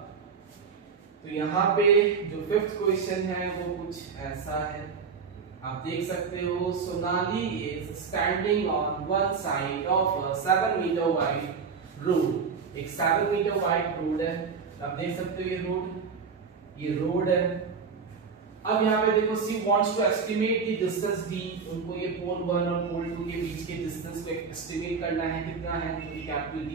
तो यहाँ पे जो 5th क्वेश्चन है वो कुछ ऐसा है, आप देख सकते हो। Sonali is standing on one side of a 7 metre wide road. एक 7 मीटर वाइड रोड है, आप देख सकते हो ये रोड है। अब यहाँ पे देखो she wants to estimate the distance D, उनको ये पोल 1 और पोल 2 के बीच के डिस्टेंस को एस्टिमेट करना है, कितना है, तो ये कैपिटल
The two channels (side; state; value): left; quieter; 5.6 dB